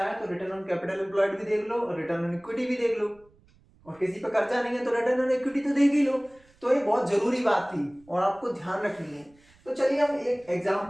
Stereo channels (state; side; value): noise; right; rumble, 30 dB below the sound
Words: है तो रिटर्न ऑन कैपिटल एम्प्लॉयड भी देख लो और रिटर्न ऑन इक्विटी भी देख लो, और किसी पर कर्जा नहीं है तो रिटर्न ऑन इक्विटी तो देख ही लो। तो ये बहुत जरूरी बात थी और आपको ध्यान रखनी है। तो चलिए हम एक